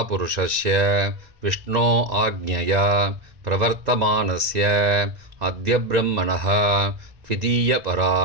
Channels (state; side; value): late; left; 2.0 ms